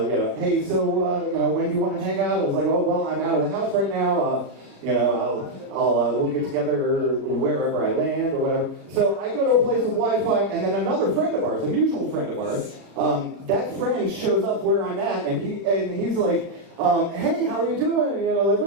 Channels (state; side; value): late; left; 36 ms